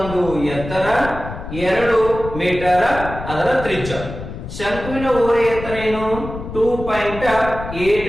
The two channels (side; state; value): left; noise; rumble, 10 dB below the sound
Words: ಎತ್ತರ 2 ಮೀಟರ್ ಅದರ ತ್ರಿಜ್ಯ ಶಂಕುವಿನ ಓರೆ ಎತ್ತರ ಏನು